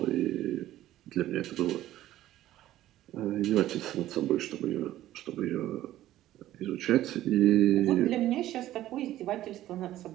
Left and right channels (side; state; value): left; quieter; 14.0 dB